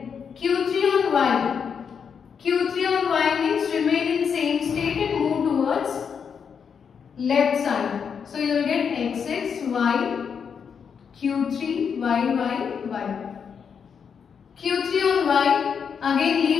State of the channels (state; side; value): quieter; right; 6.8 dB